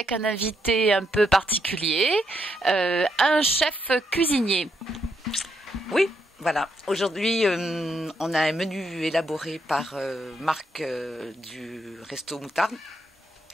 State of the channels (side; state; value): both; normal; correlation 0.78